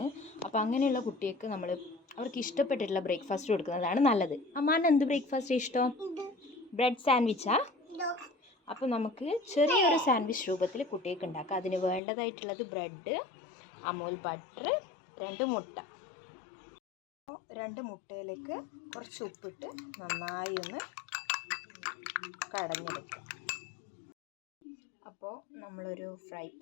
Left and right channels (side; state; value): right; drops out; at 12.0 s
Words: അപ്പോൾ അങ്ങനെയുള്ള കുട്ടികൾക്ക് അവർക്ക് ഇഷ്ടപ്പെട്ടിട്ടുള്ള ബ്രേക്ക്ഫാസ്റ്റ് കൊടുക്കുന്നതാണ് നല്ലത്. അമ്മാന് എന്ത് ബ്രേക്ക്ഫാസ്റ്റ് ഇഷ്ടം? ബ്രെഡ് സാൻഡ്വിച്ചാ? അപ്പോൾ നമുക്ക് ചെറിയൊരു സാൻഡ്വിച്ച് രൂപത്തിൽ കുട്ടികൾക്ക് ഉണ്ടാക്കാം. അതിന് വേണ്ടതായിട്ടുള്ളത് ബ്രെഡ്, അമൂൽ ബട്ടർ, 2 മുട്ട. 2 മുട്ടയിലേക്ക് കുറച്ച് ഉപ്പിട്ട് നന്നായി ഒന്ന് കടഞ്ഞെടുക്കുക. അപ്പോൾ നമ്മളൊരു ഫ്രൈ